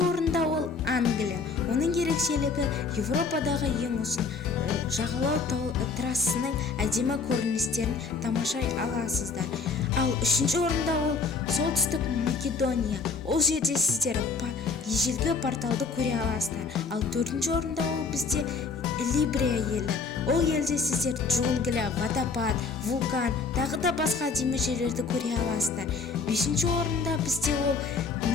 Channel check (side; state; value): right; quieter; 4.8 dB